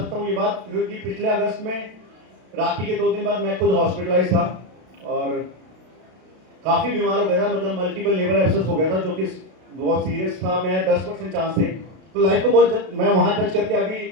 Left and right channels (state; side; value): late; left; 32 ms